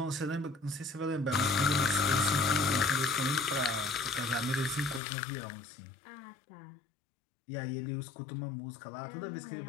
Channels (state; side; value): drops out; right; at 5.0 s